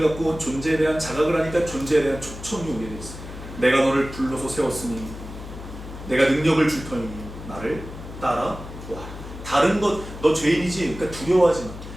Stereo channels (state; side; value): noise; left; hum, 12 dB below the sound